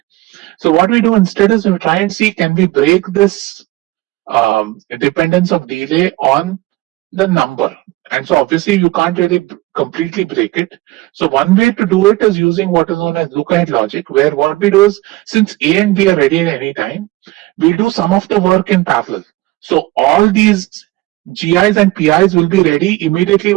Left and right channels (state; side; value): quieter; left; 18.6 dB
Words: So what we do instead is we try and see, can we break this dependence of delay on the number? And so obviously you can't really completely break it. So one way to do it is using what is known as look-ahead logic, where what we do is, since A and B are ready at any time, we do some of the work in parallel. So all these GIs and PIs will be ready immediately